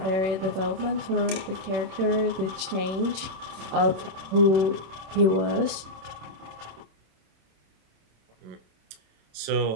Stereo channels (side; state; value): left; late; 26 ms